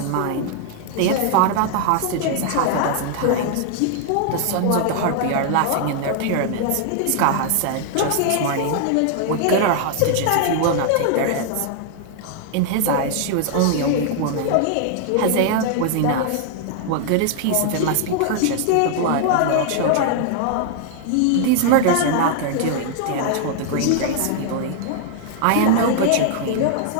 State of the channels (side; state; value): both; different; correlation 0.00